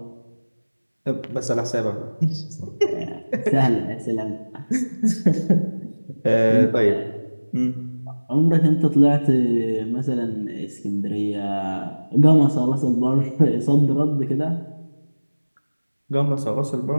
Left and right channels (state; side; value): inverted; both; correlation -1.00